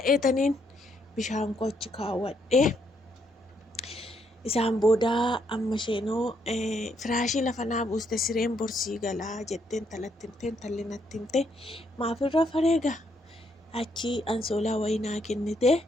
bishaan koo achi kaawwadhee. Isaan booda amma isheenoo firaashii lafa naa buuste sireen borsii galaa jetteen talatti himteen talli natti himte maafirra fareega achi ansoolaa wayii naa kennite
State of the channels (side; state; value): both; normal; correlation 0.74